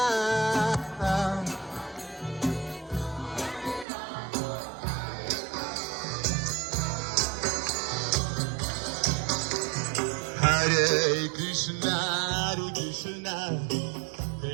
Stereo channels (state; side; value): drops out; left; at 3.9 s